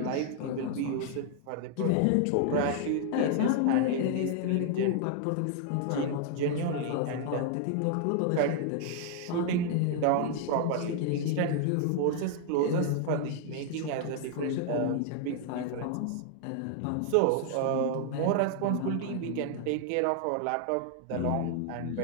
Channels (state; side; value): different; both; correlation 0.00